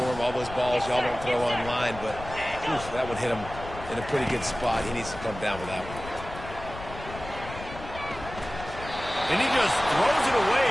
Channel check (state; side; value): noise; left; rumble, 12 dB below the sound